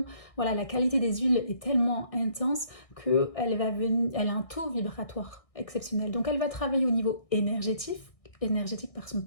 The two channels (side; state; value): right; late; 1.6 ms